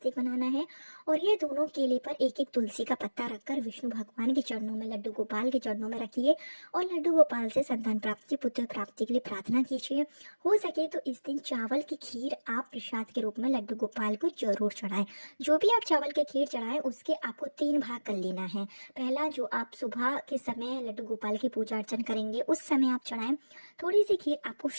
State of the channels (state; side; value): inverted; both; correlation -1.00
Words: बनाना है और ये दोनों केले पर एक तुलसी का पत्ता रखकर विष्णु भगवान के चरणों में, लड्डू गोपाल के चरणों में रखिए और लड्डू गोपाल से संतान प्राप्ति, पुत्र प्राप्ति के लिए प्रार्थना कीजिए। हो सके तो इस दिन चावल की खीर आप प्रसाद के रूप में लड्डू गोपाल को जरूर चढ़ाएं। जो भी आप चावल की खीर चढ़ाएं उसके आपको 3 भाग कर लेना है। पहला, जो आप सुबह के समय लड्डू गोपाल की पूजा अर्चन करेंगे उस समय आप चढ़ाएं। थोड़ी सी खीर आपको